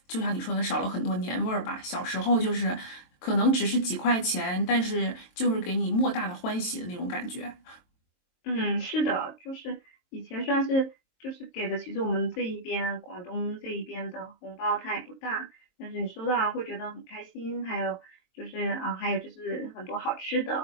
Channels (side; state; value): right; late; 23 ms